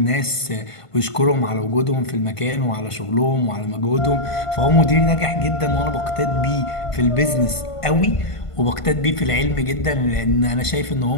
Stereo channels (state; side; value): late; right; 1.5 ms